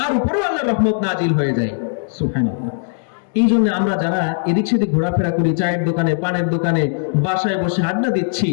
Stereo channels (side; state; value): right; silent; 67 dB below the other